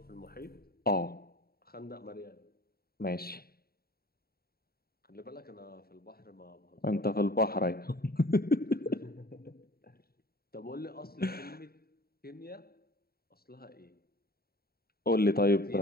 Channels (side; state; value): right; late; 0.45 ms